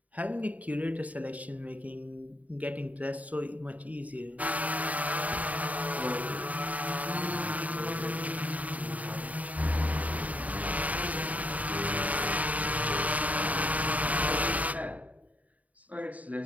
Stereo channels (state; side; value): late; left; 0.072 ms